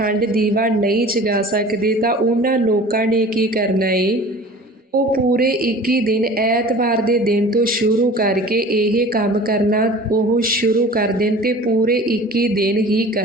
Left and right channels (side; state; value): both; normal; correlation 0.42